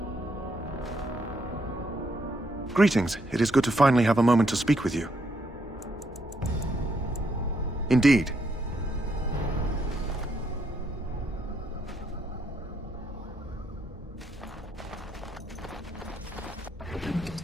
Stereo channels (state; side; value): normal; both; correlation 0.75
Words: Greetings. It is good to finally have a moment to speak with you. Indeed.